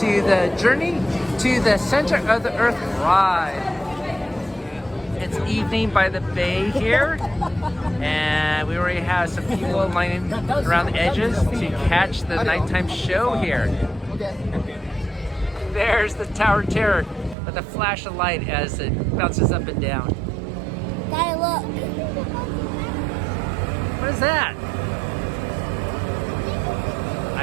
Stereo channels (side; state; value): left; drops out; at 17.4 s